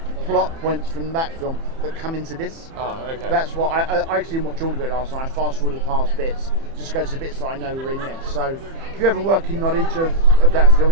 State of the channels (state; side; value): late; left; 30 ms